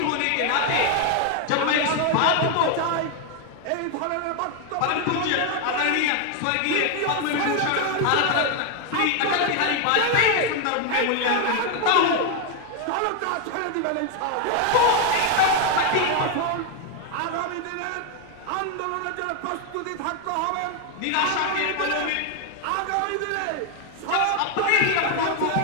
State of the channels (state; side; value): different; both; correlation 0.01